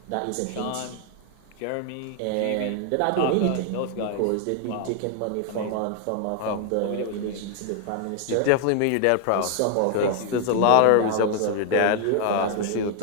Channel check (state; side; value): different; both; correlation 0.00